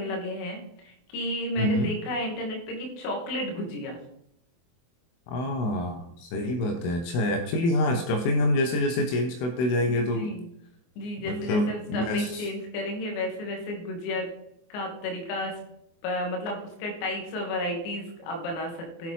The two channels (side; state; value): right; late; 24 ms